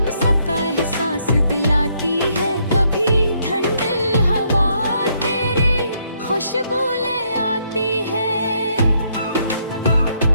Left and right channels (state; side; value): inverted; both; correlation -0.72